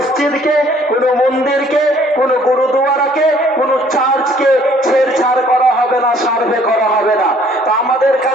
কোনো মন্দিরকে, কোনো গুরুদুয়ারাকে, কোনো চার্চকে ছেড়ছাড় করা হবে না, সার্ভে করা হবে না। তো আমাদের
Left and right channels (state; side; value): normal; both; correlation 0.59